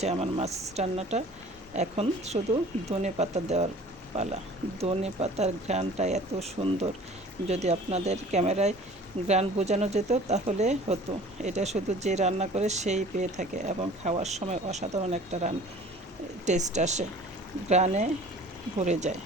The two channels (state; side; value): normal; both; correlation 0.47